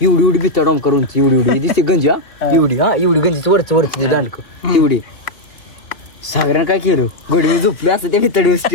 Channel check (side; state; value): right; late; 2.7 ms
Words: एवढी भित्ता डॉम करून एवढी दिसते गंजी एवढी गंजीची वरची दांडक एवढी सागऱ्यानं काय केलं गोडी मी झोपले असं त्या भितडी